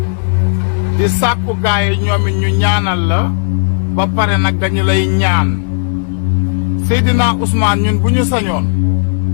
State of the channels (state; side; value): silent; right; 70 dB below the other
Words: di sàkku gaay ñoom it ñu ñaanal la ba pare nag dañu lay ñaan Seydina Ousmane ñun bu ñu sañoon